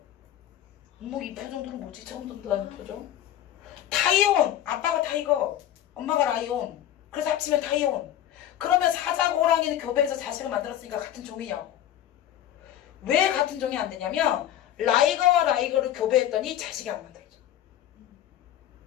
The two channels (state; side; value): quieter; right; 11.7 dB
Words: 어머, 이 표정들은 뭐지? 처음 듣는다는 표정? 타이온, 아빠가 타이거, 엄마가 라이온. 그래서 합치면 타이온. 그러면 사자와 호랑이는 교배해서 자식을 만들었으니까 같은 종이냐고. 왜 같은 종이 안 되냐면 라이거와 라이거를 교배했더니 자식이 안 만들어져.